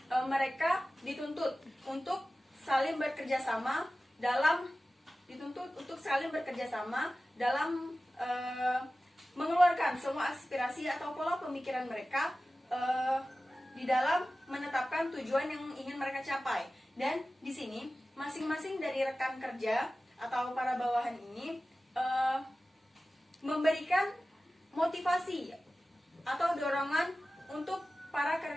mereka dituntut untuk saling bekerja sama dalam mengeluarkan semua aspirasi atau pola pemikiran mereka di dalam menetapkan tujuan yang ingin mereka capai. Dan di sini masing-masing dari rekan kerja atau para bawahan ini memberikan motivasi atau dorongan untuk para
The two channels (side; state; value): both; normal; correlation 0.96